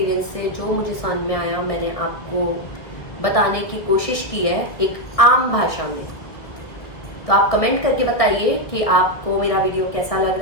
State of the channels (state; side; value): late; right; 1.9 ms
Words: से जो मुझे समझ में आया मैंने आपको बताने की कोशिश की है एक आम भाषा में। तो आप कमेंट करके बताइए कि आपको मेरा वीडियो कैसा लग